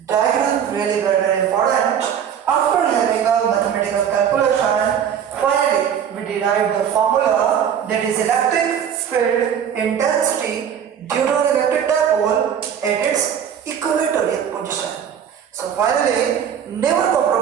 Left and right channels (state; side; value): quieter; left; 8.5 dB